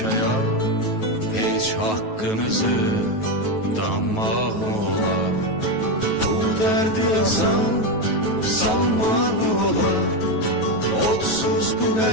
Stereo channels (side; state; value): right; late; 9.3 ms